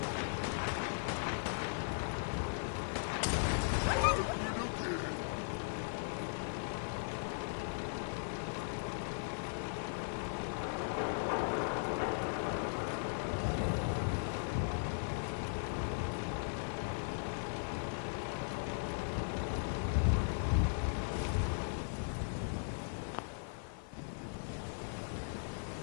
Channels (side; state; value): right; silent; 52 dB below the other